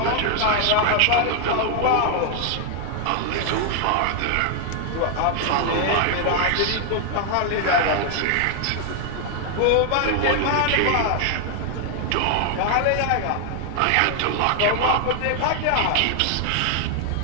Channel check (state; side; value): different; both; correlation 0.00